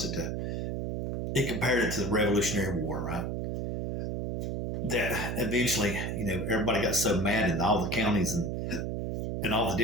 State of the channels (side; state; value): right; noise; hum, 2 dB below the sound